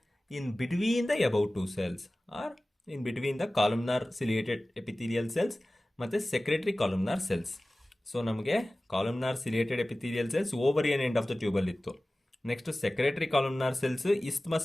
in between the above 2 cells or in between the columnar ciliated epithelial cells ಮತ್ತು ಸೆಕ್ರೆಟರಿ ಕಾಲುಮ್ನಾರ್ ಸೆಲ್ಸ್. ಸೊ ನಮಗೆ ಕಾಲುಮ್ನಾರ್ ciliated epithelial cells ovarian end of the ಟ್ಯೂಬಲ್ಲಿ ಇತ್ತು. Next secretory columnar cells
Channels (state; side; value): normal; both; correlation 0.97